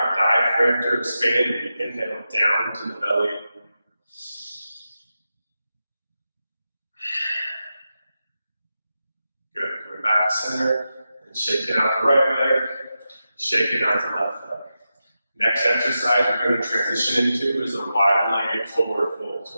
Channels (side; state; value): both; inverted; correlation -0.90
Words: diaphragm to expand. We inhale down to the belly. Good. Going back to center and shaking out the right leg, shaking out the left leg. Next exercise we're going to transition into is a wide-legged forward fold.